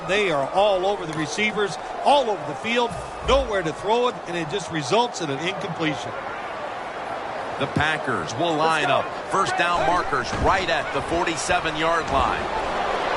They are all over the receivers, all over the field, nowhere to throw it, and it just results in an incompletion. The Packers will line up. First down markers right at the 47-yard line.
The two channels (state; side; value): identical; both; correlation 1.00